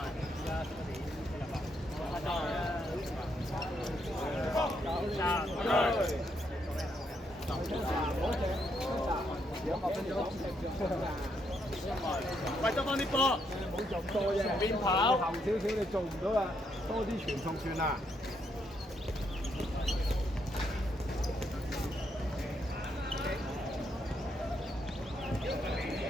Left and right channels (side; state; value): both; normal; correlation 0.76